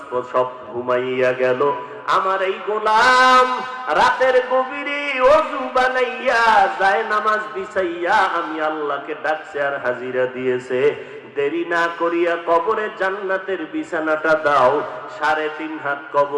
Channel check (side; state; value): both; identical; correlation 1.00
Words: সব ঘুমাইয়া গেল। আমার এই গোলাম রাতের গভীরে ওযু বানাইয়া যায় নামাজ বিছাইয়া আমি আল্লাহকে ডাকছে আর হাজিরা দিয়েছে। দেরি না করিয়া কবরে জান্নাতের বিছানাটা দাও, 3.5 হাত